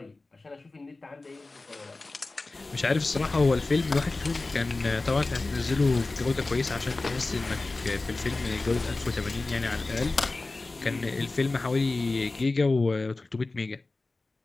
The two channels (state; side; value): quieter; right; 3.3 dB